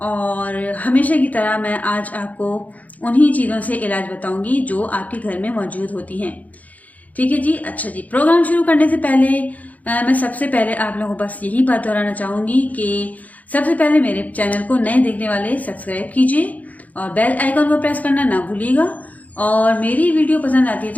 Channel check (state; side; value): late; right; 0.076 ms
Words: और हमेशा की तरह मैं आज आपको उन्हीं चीज़ों से इलाज बताऊंगी जो आपके घर में मौजूद होती हैं। ठीक है जी। अच्छा जी, प्रोग्राम शुरू करने से पहले मैं सबसे पहले आप लोगों को बस यही बात दोहराना चाहूँगी कि सबसे पहले मेरे चैनल को नए देखने वाले सब्सक्राइब कीजिए और बेल आइकन को प्रेस करना ना भूलिएगा। और मेरी वीडियो पसंद आती है